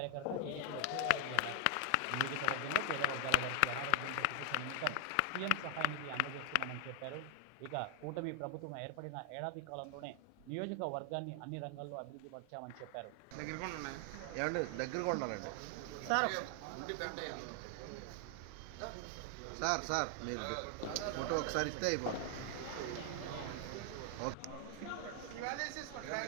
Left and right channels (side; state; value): both; different; correlation 0.00